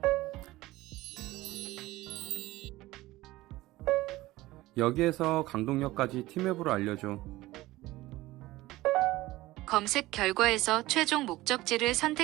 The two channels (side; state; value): left; quieter; 18.1 dB